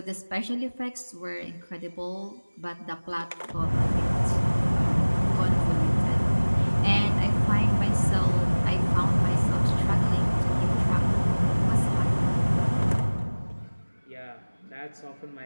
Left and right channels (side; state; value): both; inverted; correlation -1.00